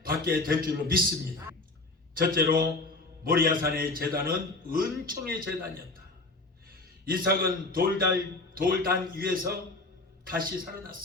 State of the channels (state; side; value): quieter; right; 3.1 dB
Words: 받게 될 줄로 믿습니다. 첫째로 모리아산의 제단은 은총의 제단이었다. 이삭은 돌단 위에서 다시